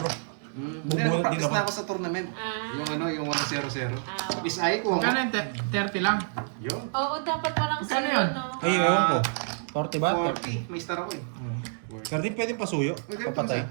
Hindi, Bubunot din practice ako. na ako sa tournament. Ah. Yung ano, yung 1-0-0. Ah. Miss Ay ko. Magkano yung 30 lang? Yun. Oo, dapat walang Magkano zero, yun? no? Ay, ewan ko. 40 ba? 40. May star ako eh. Kardin pwedeng pasuyo. Uy, ganito Papatay. sa-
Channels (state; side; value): silent; left; digital silence